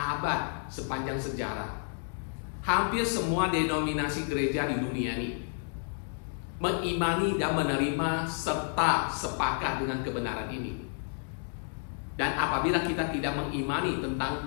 sepanjang sejarah. Hampir semua denominasi gereja di dunia ini mengimani dan menerima serta sepakat dengan kebenaran ini. Dan apabila kita tidak mengimani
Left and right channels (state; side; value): silent; right; 57 dB below the other